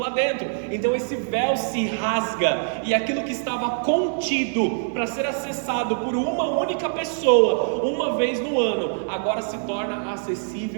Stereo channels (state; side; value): silent; left; 63 dB below the other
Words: dentro. Então esse véu se rasga, e aquilo que estava contido para ser acessado por uma única pessoa, uma vez no ano, agora se torna